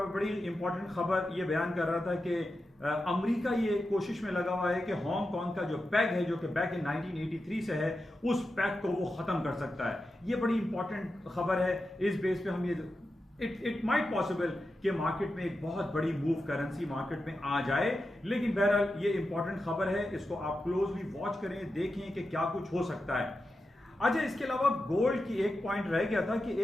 इंपॉर्टेंट खबर ये बयान कर रहा था कि अमेरिका ये कोशिश में लगा हुआ है कि हांगकांग का जो पैग है, जो कि बैक इन 1983 से है, उस पैग को वो खत्म कर सकता है। ये बड़ी इंपॉर्टेंट खबर है। इस बेस पे हम ये इट माइट पॉसिबल कि मार्केट में एक बहुत बड़ी मूव करेंसी मार्केट में आ जाए, लेकिन बहरहाल ये इंपॉर्टेंट खबर है, इसको आप क्लोजली वॉच करें, देखें कि क्या कुछ हो सकता है। अच्छा, इसके अलावा गोल्ड की एक पॉइंट रह गया था कि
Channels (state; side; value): normal; both; correlation 0.90